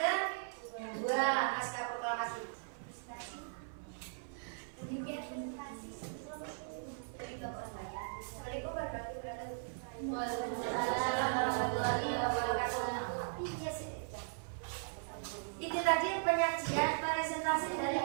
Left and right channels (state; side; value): silent; left; 52 dB below the other